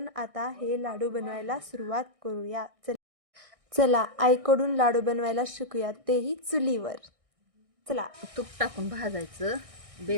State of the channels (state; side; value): late; left; 1.6 ms